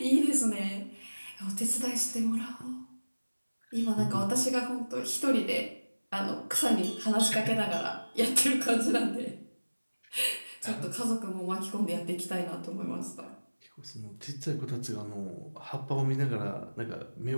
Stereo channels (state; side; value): inverted; both; correlation -1.00